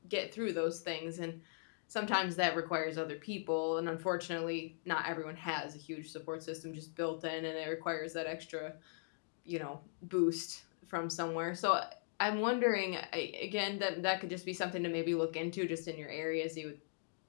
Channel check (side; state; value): right; silent; digital silence